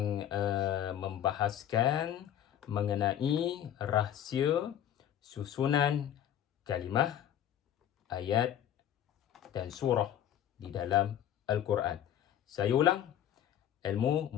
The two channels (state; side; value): quieter; right; 10.6 dB